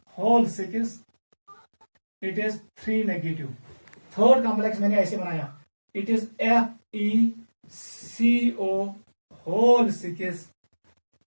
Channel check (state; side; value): inverted; both; correlation -1.00